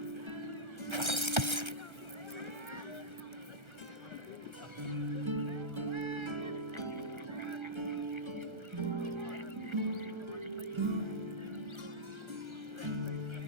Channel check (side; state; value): left; late; 1.3 ms